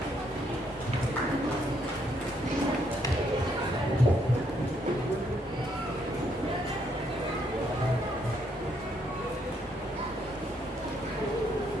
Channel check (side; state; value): both; normal; correlation 0.72